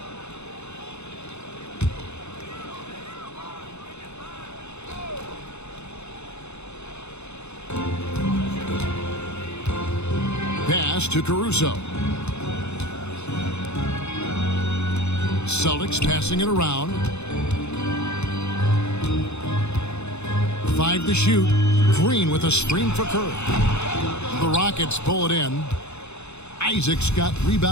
Pass to Caruso. Celtics passing it around. 5 to shoot. Green with a screen for Curry. The Rockets pull it in. Isaac's got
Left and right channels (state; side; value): late; right; 0.81 ms